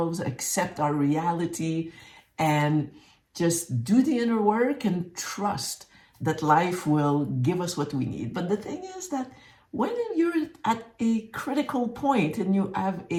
accept our reality, and just do the inner work and trust that life will give us what we need. But the thing is that when you're at a critical point and you have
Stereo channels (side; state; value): both; identical; correlation 1.00